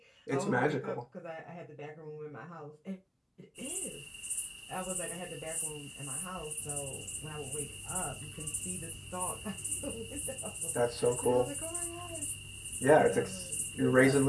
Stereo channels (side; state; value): both; identical; correlation 1.00